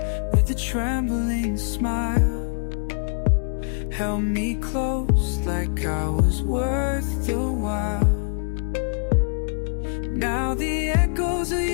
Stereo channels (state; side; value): silent; right; digital silence